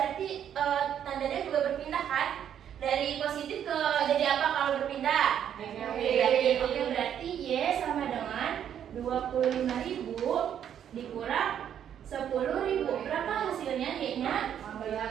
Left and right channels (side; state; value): left; quieter; 9.4 dB